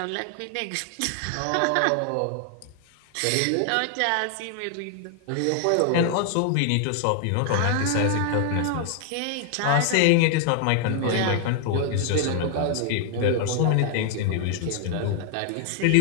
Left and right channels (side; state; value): both; different; correlation 0.00